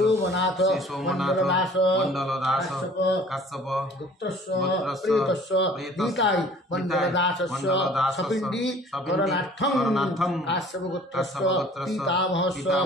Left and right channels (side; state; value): both; normal; correlation 0.50